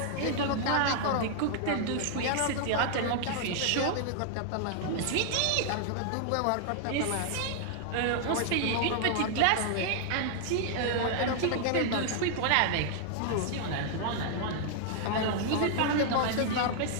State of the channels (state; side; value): different; both; correlation -0.01